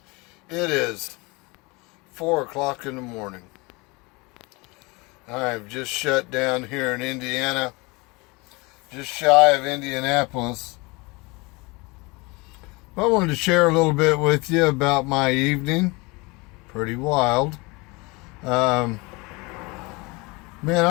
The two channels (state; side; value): quieter; right; 25.9 dB